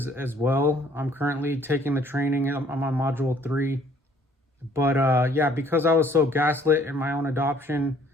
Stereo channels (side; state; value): both; normal; correlation 0.60